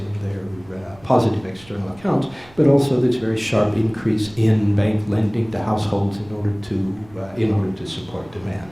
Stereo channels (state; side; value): noise; right; rumble, 24 dB below the sound